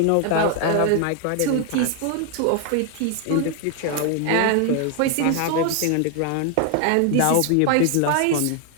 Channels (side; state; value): both; different; correlation 0.00